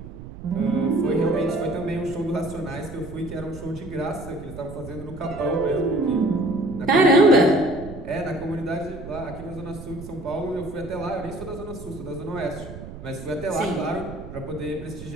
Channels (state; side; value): noise; right; rumble, 13 dB below the sound